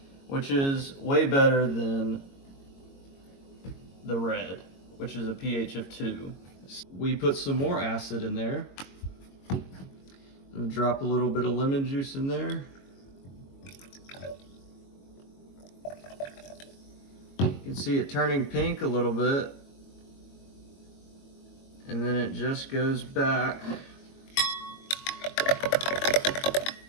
which is way better than the red, which is a pH of 2. We put some more acid in there. And drop a little bit of lemon juice in there. You can see it turning pink a little bit. And then it just goes back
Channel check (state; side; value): late; right; 22 ms